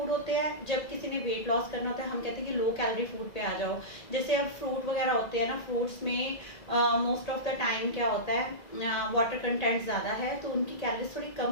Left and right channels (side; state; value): right; late; 2.0 ms